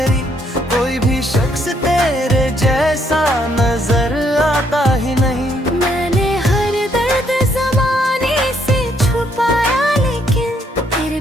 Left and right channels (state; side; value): normal; both; correlation 0.71